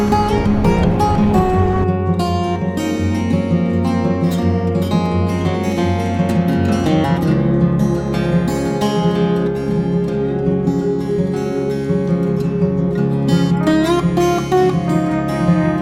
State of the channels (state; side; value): identical; both; correlation 1.00